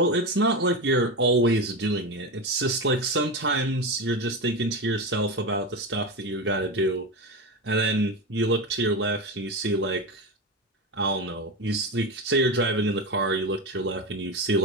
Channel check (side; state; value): both; normal; correlation 0.19